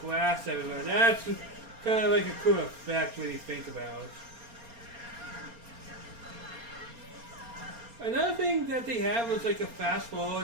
glass everywhere. That's kind of like a cool effect when you think about it. Another thing that they have was like a fast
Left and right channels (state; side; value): late; left; 4.3 ms